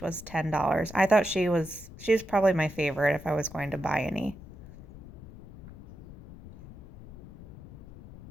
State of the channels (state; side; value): noise; left; rumble, 17 dB below the sound